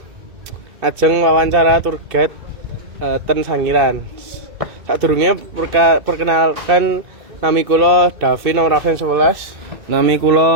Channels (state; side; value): late; left; 2.6 ms